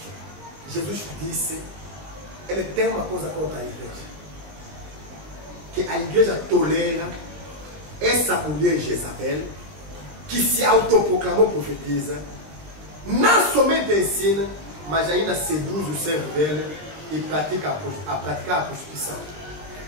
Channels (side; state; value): left; late; 19 ms